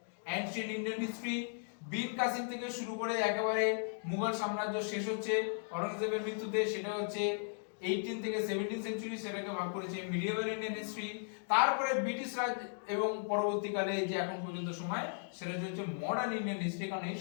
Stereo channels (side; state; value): right; silent; digital silence